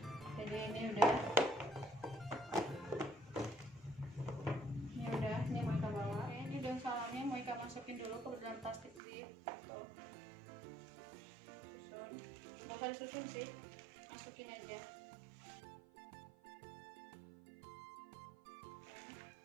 Jadi ini udah ini mau Ika bawa. Ini daun salamnya mau Ika masukin dulu ke dalam plastik zip. Tuh, susun, nggak usah disusun sih, masukin aja.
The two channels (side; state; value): left; drops out; at 9.0 s